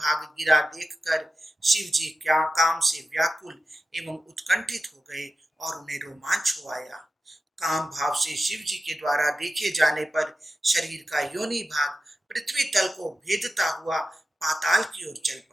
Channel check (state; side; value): normal; both; correlation 0.93